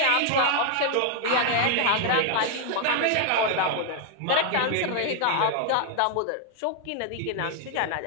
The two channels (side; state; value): both; different; correlation 0.00